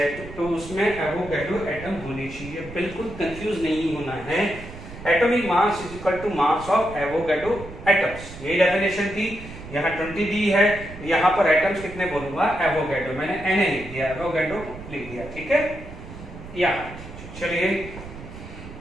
तो उसमें एवोगैड्रो एटम होने चाहिए। बिल्कुल कंफ्यूज नहीं होना है, atomic mass is equal to mass of Avogadro atoms. यही डेफिनेशन थी। यहाँ 20 दी है, यहाँ पर एटम्स कितने बोलूंगा एवोगैड्रो, मैंने Na लिख दिया, एवोगैड्रो लिख दिया, ठीक है। यहाँ चलिए,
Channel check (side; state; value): right; noise; rumble, 14 dB below the sound